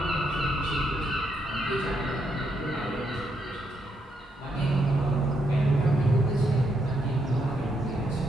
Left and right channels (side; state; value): both; normal; correlation 0.78